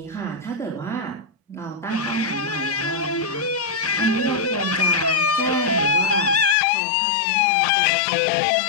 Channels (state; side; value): drops out; right; at 6.6 s